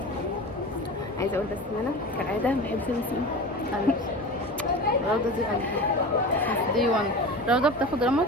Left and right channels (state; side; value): normal; both; correlation 0.31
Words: عايزة اقول بس ان انا كالعادة ما بحبش النسيم. روضة دي قلبي. دي 1 روضة بتاخد رمض